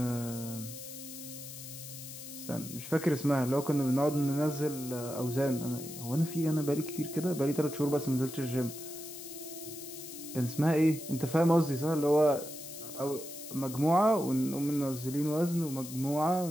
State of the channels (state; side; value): noise; left; hiss, 12 dB below the sound